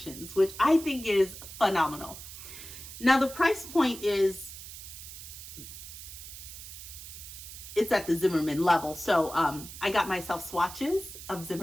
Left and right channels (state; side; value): noise; right; hiss, 12 dB below the sound